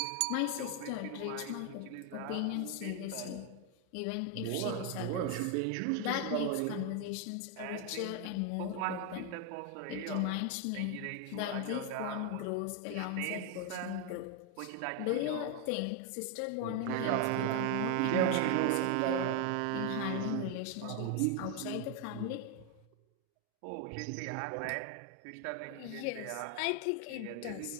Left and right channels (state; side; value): different; both; correlation 0.01